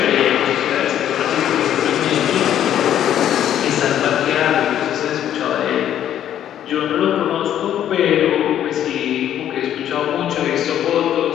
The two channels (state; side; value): quieter; right; 10.8 dB